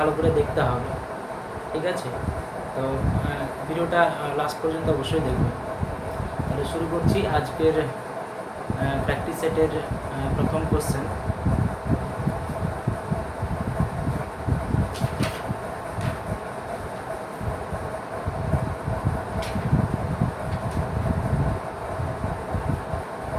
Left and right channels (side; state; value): both; identical; correlation 1.00